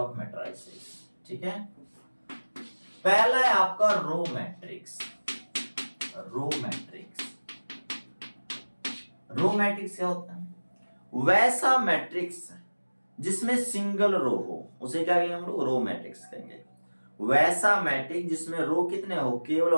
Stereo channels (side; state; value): both; inverted; correlation -1.00